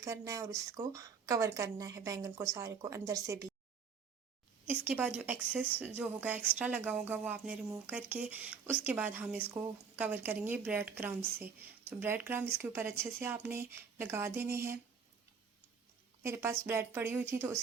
है और इसको कवर करना है बैंगन को सारे को अंदर से भी। इसके बाद जो एक्सेस जो होगा एक्स्ट्रा लगा होगा वो आपने रिमूव करके उसके बाद हम इसको कवर करेंगे ब्रेड क्रम्ब से। तो ब्रेड क्रम्ब इसके ऊपर अच्छे से आपने लगा देने हैं। मेरे पास ब्रेड पड़ी हुई थी तो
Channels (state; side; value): quieter; left; 5.9 dB